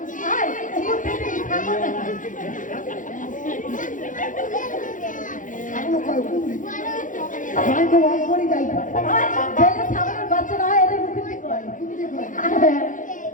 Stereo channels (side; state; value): right; late; 0.38 ms